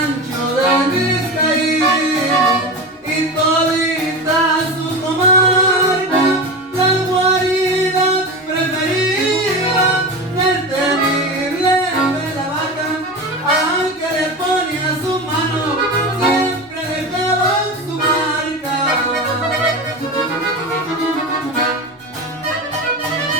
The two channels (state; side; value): normal; both; correlation 0.25